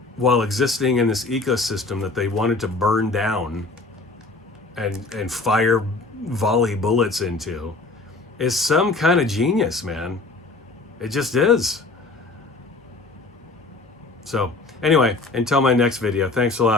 while existing in this ecosystem that they wanted to burn down and fire volley bullets into, is some kind of genius, man. It just is. So anyway, until my next video, thanks a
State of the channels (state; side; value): quieter; right; 3.6 dB